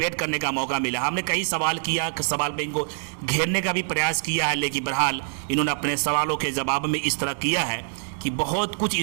करने का मौका मिला। हमने कई सवाल किया, सवाल पे इनको घेरने का भी प्रयास किया है, लेकिन बहरहाल इन्होंने अपने सवालों के जवाब में इस तरह किया है कि बहुत कुछ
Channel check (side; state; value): left; silent; 62 dB below the other